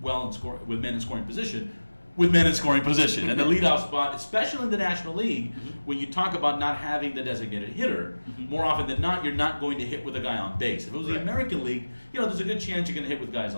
with men in scoring position, and the leadoff spot, especially in the National League, when you talk about not having the designated hitter, more often than not, you're not going to hit with a guy on base. If it was the American League, there's a good chance you're going to hit with guys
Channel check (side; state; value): both; inverted; correlation -1.00